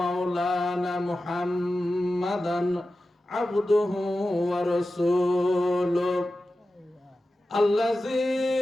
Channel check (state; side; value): normal; both; correlation 0.93